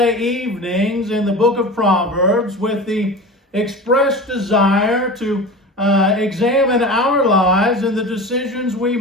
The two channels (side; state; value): both; normal; correlation 0.32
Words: evenings in the Book of Proverbs with the expressed desire to examine our lives and the decisions we